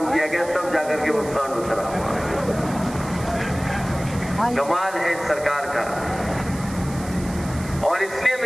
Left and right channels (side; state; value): right; noise; hiss, 16 dB below the sound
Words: किया गया, तब जाकर के वो सांड उतरा। कमाल है इस सरकार का। और इसलिए